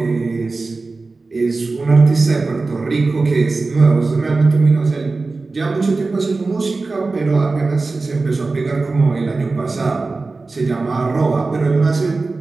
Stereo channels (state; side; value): quieter; left; 3.7 dB